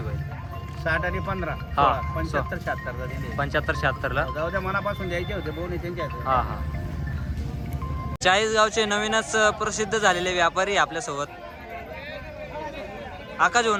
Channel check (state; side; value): identical; both; correlation 1.00